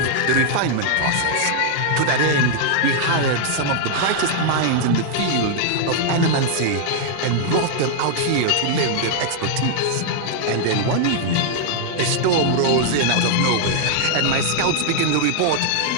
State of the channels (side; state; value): both; different; correlation 0.00